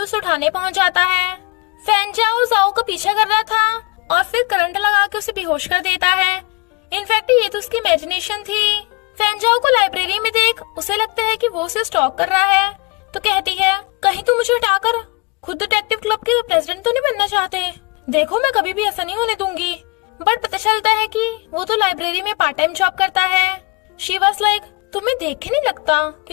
से उठाने पहुंच जाता है। फेंजाओ जाओ का पीछा कर रहा था और फिर करंट लगा के उसे बेहोश कर देता है। इनफैक्ट ये तो उसकी इमेजिनेशन थी। फेंजाओ को लाइब्रेरी में देख उसे लगता है कि वो उसे स्टॉक कर रहा है तो कहती है कहीं तुम मुझे हटाकर खुद डिटेक्टिव क्लब के प्रेसिडेंट तो नहीं बनना चाहते। देखो मैं कभी भी ऐसा नहीं होने दूंगी। बट पता चलता है कि वो तो लाइब्रेरी में पार्ट टाइम जॉब करता है। शी वाज लाइक तुम्हें देख के नहीं लगता कि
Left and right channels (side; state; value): right; quieter; 29.1 dB